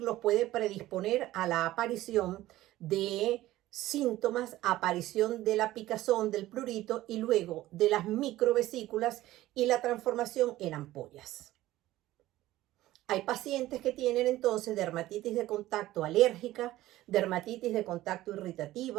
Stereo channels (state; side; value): quieter; left; 15.8 dB